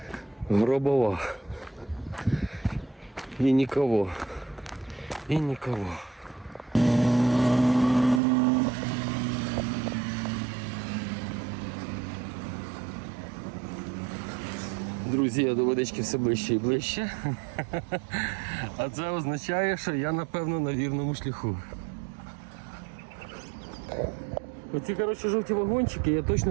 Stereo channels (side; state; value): left; drops out; at 8.2 s